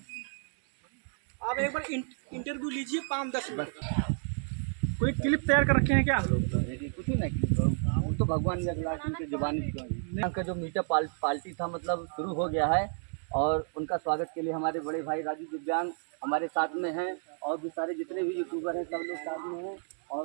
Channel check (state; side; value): silent; left; 57 dB below the other